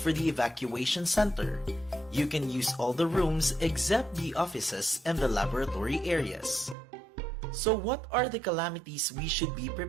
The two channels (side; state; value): left; drops out; at 6.8 s